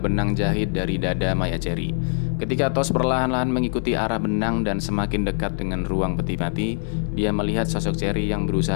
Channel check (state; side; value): silent; right; 60 dB below the other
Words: benang jahit dari dada mayat Cherry. Ketika Tos perlahan-lahan mengikuti arah benang dan semakin dekat dengan ruang peti mati, dia melihat sosok Cherry yang